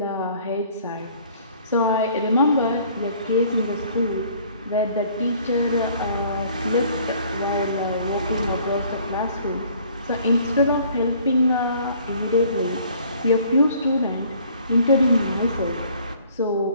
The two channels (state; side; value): inverted; both; correlation -0.56